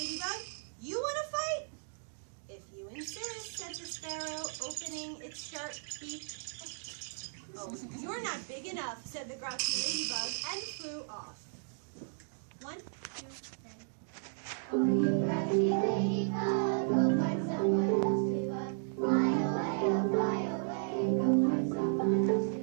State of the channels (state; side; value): silent; left; digital silence